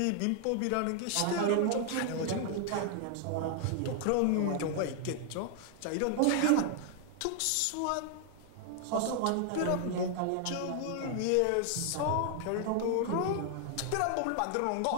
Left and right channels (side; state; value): both; different; correlation 0.00